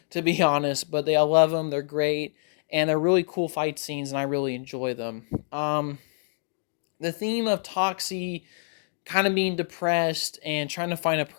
to be honest, but I love them. They're great. And they're really cool fight scenes, and I really enjoy them. The theme of Toxie kind of being depressed and trying to find a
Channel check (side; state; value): right; silent; digital silence